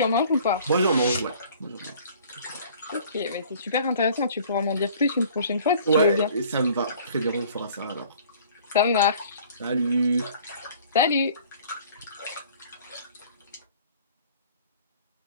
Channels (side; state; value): both; inverted; correlation -0.51